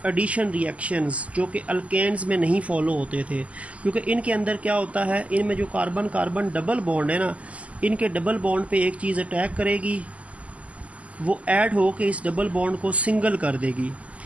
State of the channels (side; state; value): left; late; 0.067 ms